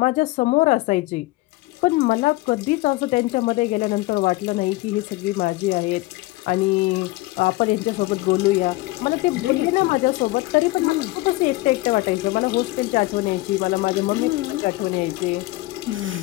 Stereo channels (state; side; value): quieter; right; 19.9 dB